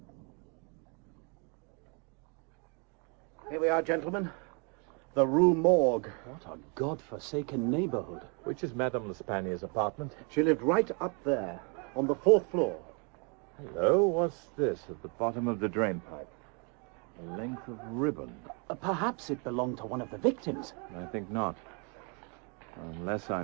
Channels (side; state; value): left; quieter; 35.8 dB